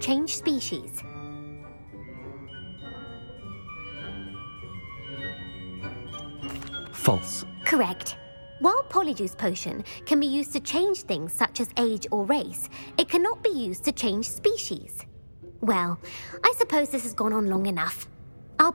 species. False. Correct. While Polyjuice Potion can be used to change things such as age or race, it cannot be used to change species. Well, I suppose this has gone on long enough. I'll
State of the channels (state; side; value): inverted; both; correlation -1.00